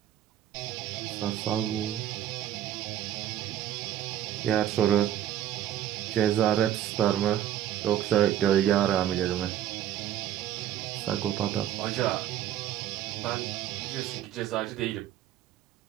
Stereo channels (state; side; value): quieter; left; 11.4 dB